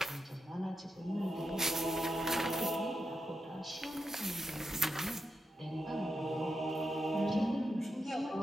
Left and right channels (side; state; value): both; normal; correlation 0.87